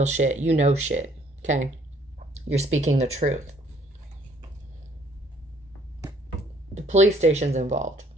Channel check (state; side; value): normal; both; correlation 0.62